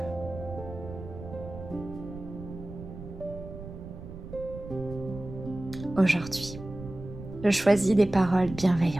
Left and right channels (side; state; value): right; noise; rumble, 12 dB below the sound